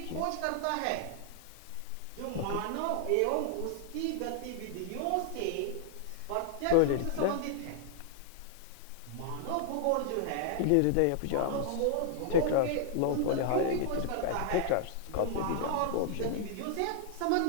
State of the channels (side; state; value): both; different; correlation 0.00